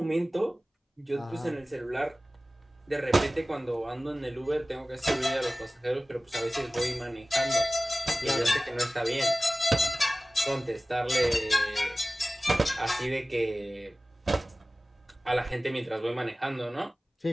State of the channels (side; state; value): both; normal; correlation 0.97